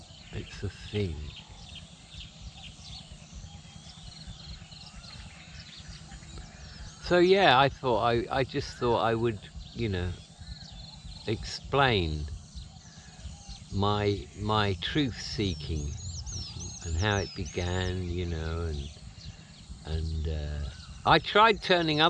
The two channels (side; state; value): both; identical; correlation 1.00